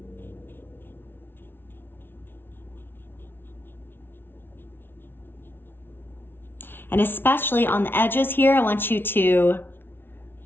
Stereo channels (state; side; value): late; right; 0.11 ms